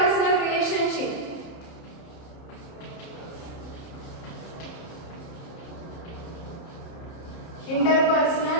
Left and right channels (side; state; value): right; late; 31 ms